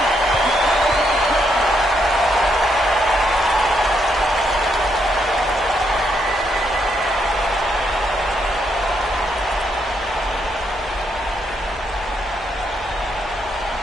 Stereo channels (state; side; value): noise; left; rumble, 22 dB below the sound